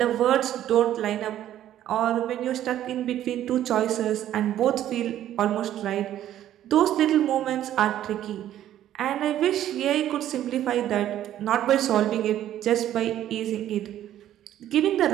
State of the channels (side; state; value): left; quieter; 12.0 dB